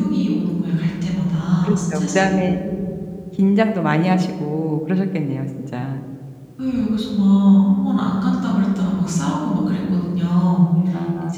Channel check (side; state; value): both; identical; correlation 1.00